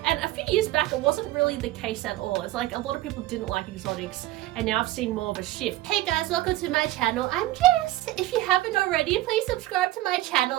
and a few years back it wasn't really the case at all. It's like a lot of people didn't like exotics, and now I've seen more of a shift. Hey guys, welcome to my channel. I'm Jess. If you haven't already, please subscribe to my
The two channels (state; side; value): quieter; left; 16.5 dB